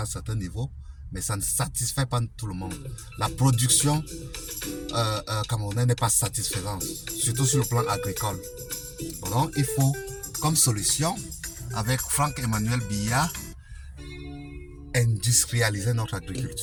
un certain niveau, mais ça ne satisfait pas tout le monde. La production camerounaise n'est pas satisfaisante, surtout sur le plan agricole. Donc, il faut, comme solution, avec Franck-Emmanuel Biya, industrialiser notre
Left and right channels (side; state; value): both; identical; correlation 1.00